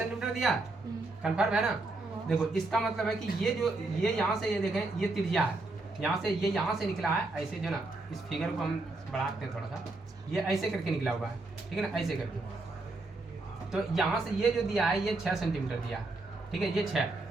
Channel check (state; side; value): quieter; left; 3.2 dB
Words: दिया, कन्फर्म है ना। देखो इसका मतलब है कि ये जो ये यहाँ से ये देखें ये त्रिज्या है, यहाँ से ये यहाँ से निकला है ऐसे, जो ना इस फिगर को हम बढ़ाते हैं थोड़ा सा, ये ऐसे करके निकला हुआ है, ठीक है ना, ऐसे करके। तो यहाँ से ये जो दिया है ये 6 सेंटीमीटर दिया है, ठीक है, ये 6,